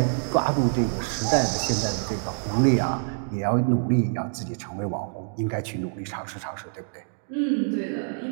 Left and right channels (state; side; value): silent; left; digital silence